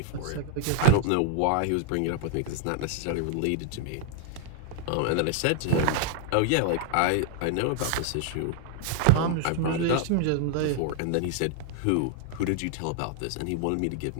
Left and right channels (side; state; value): both; different; correlation 0.00